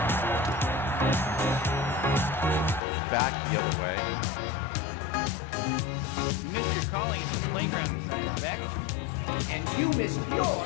Back the other way. You missed your calling at the playground, Beck. And you missed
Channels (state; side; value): drops out; right; at 2.8 s